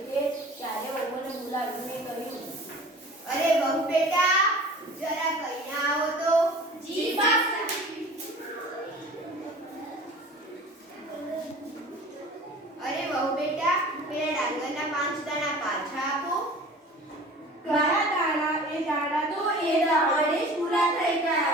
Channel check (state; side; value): normal; both; correlation 0.43